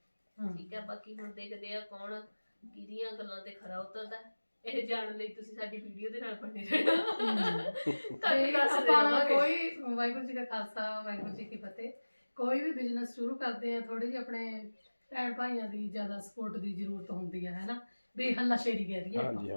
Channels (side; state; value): both; inverted; correlation -1.00